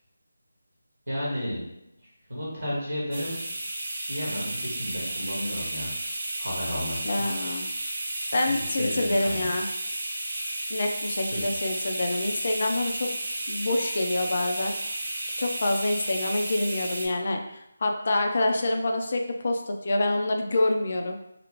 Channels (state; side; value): inverted; both; correlation -0.92